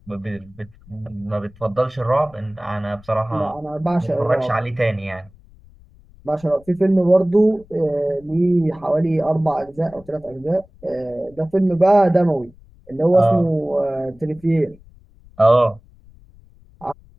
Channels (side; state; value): left; noise; rumble, 25 dB below the sound